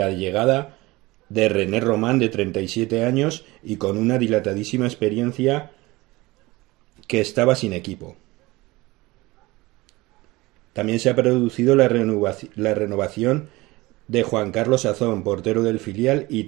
llegada de René Román, de 37 años y con una dilatadísima experiencia, que estaba sin equipo. También se ha producido la renovación de Juan Carlos Azón, portero del filial y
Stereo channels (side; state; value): left; quieter; 21.1 dB